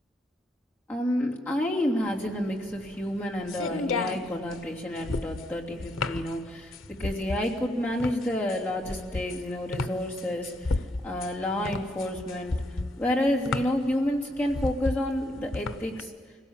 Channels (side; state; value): both; normal; correlation 0.75